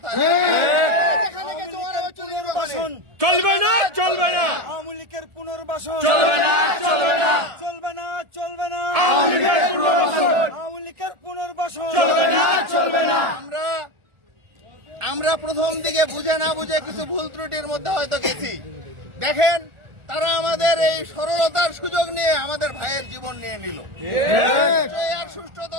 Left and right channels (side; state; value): left; late; 1.4 ms